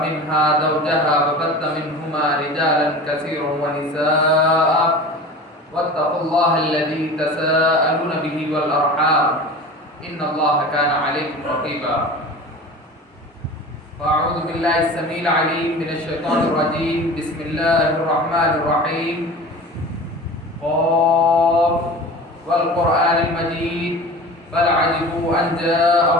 منها زوجها وبث منهما رجالا كثيرا ونساء واتقوا الله الذي تساءلون به والأرحام إن الله كان عليكم رقيبا. فأعوذ بالله السميع العليم من الشيطان الرجيم. بسم الله الرحمن الرحيم. قاف والقرآن المجيد بل عجبوا أن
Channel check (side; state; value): both; normal; correlation 0.36